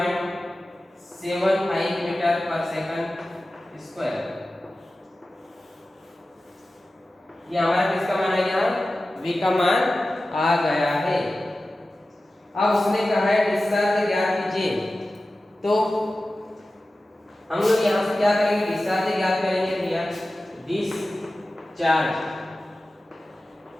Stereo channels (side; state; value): both; normal; correlation 0.95